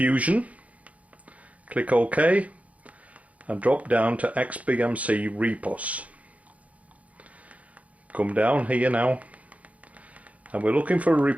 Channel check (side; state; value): left; late; 0.068 ms